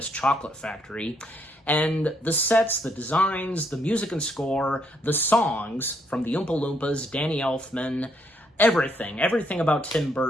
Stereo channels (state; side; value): normal; both; correlation 0.73